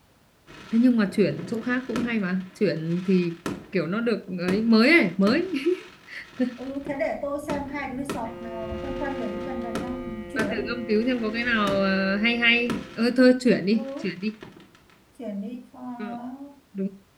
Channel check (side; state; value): both; identical; correlation 1.00